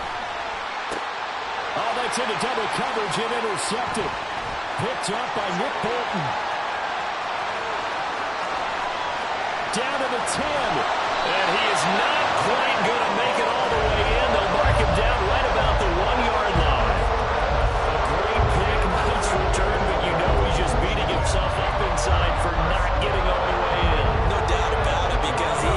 Oh, that's into double coverage and intercepted. Picked up by Nick Bolton. Down to the 10. And he is not quite going to make it all the way in. They'll mark him down right about the 1-yard line. A great pick, nice return, but you know he's just beating himself up inside for not getting all the way in. No doubt about it, because he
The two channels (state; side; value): identical; both; correlation 1.00